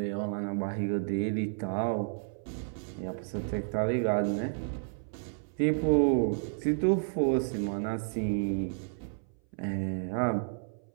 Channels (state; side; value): silent; left; 57 dB below the other